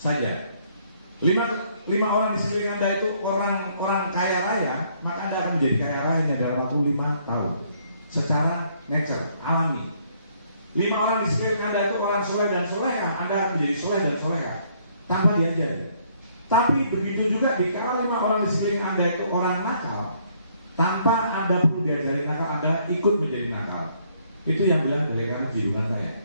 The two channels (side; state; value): both; inverted; correlation -0.67